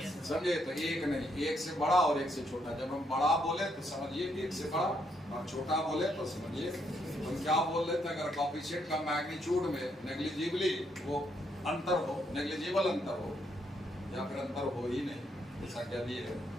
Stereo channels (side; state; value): both; normal; correlation 0.75